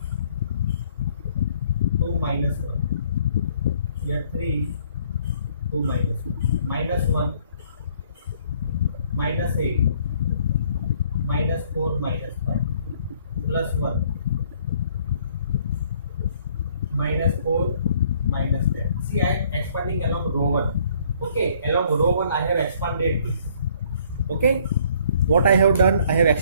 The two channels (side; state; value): both; inverted; correlation -0.61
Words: 2, minus 1. Here 3, 2, minus 1. Minus 1, minus 8, minus 4, minus 5, plus 1, minus 4, minus 10. See, I am expanding along row 1. Okay, along row 1 I have expanded this. Okay, what I have done, I have